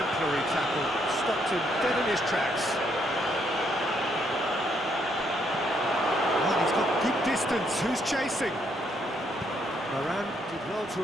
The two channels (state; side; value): normal; both; correlation 0.73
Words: tackle. Stopped him dead in his tracks. Well, he's got good distance. Who's chasing? Varane did well to